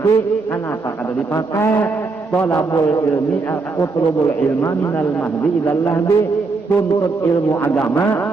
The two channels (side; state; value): left; quieter; 4.0 dB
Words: Kenapa kada dipakai? Thalabul ilmi utlubul ilma minal mahdi ilal lahdi. Tuntut ilmu